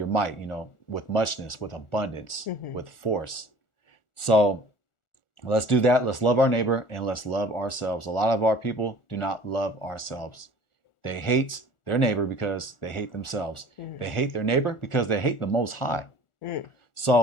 might, with muchness, with abundance, with force. So let's do that. Let's love our neighbor and let's love ourselves. A lot of our people do not love ourselves. They hate their neighbor because they hate themselves. They hate their neighbor because they hate the Most High.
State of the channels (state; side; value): late; right; 1.4 ms